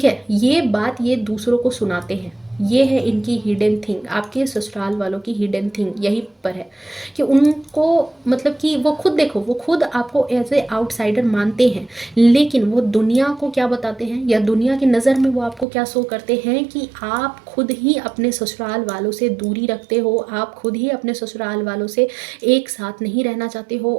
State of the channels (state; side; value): drops out; left; at 15.7 s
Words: है, ये बात ये दूसरों को सुनाते हैं, ये है इनकी हिडन थिंग, आपके ससुराल वालों की हिडन थिंग यही पर है कि उनको मतलब कि वो खुद देखो, वो खुद आपको एज ए आउटसाइडर मानते हैं, लेकिन वो दुनिया को क्या बताते हैं या दुनिया की नज़र में वो आपको क्या शो करते हैं कि आप खुद ही अपने ससुराल वालों से दूरी रखते हो, आप खुद ही अपने ससुराल वालों से एक साथ नहीं रहना चाहते हो,